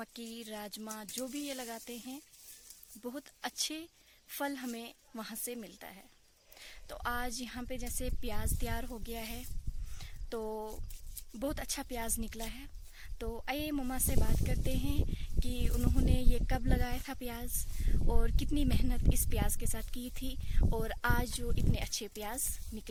राजमा, जो भी ये लगाते हैं, बहुत अच्छे फल हमें वहाँ से मिलता है। तो आज यहाँ पे जैसे प्याज तैयार हो गया है, तो बहुत अच्छा प्याज निकला है। तो आइए मम्मा से बात करते हैं कि उन्होंने ये कब लगाया था प्याज, और कितनी मेहनत इस प्याज के साथ की थी, और आज जो इतने अच्छे प्याज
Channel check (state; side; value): identical; both; correlation 1.00